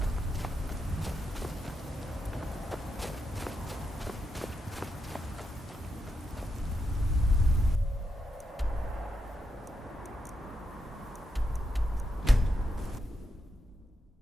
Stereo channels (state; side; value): normal; both; correlation 0.84